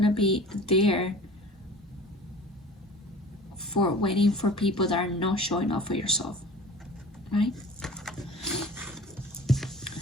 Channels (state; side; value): normal; both; correlation 0.42